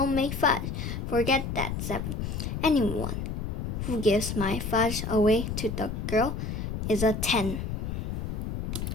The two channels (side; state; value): left; noise; rumble, 3 dB below the sound